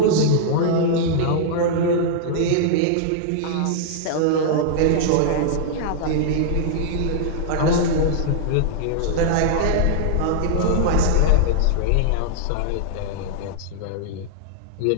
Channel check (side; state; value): both; different; correlation -0.01